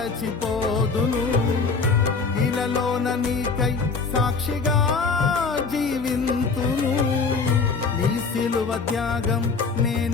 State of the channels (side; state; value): right; quieter; 4.7 dB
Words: ఇలలోన నీకై సాక్షిగా జీవింతును. నీ సిలువ త్యాగం